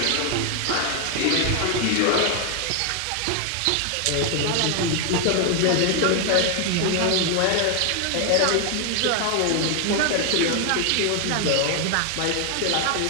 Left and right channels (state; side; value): different; both; correlation 0.01